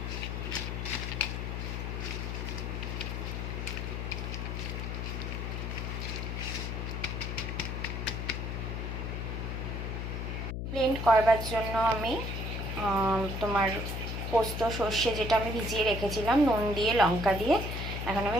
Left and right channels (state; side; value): noise; left; hum, 3 dB below the sound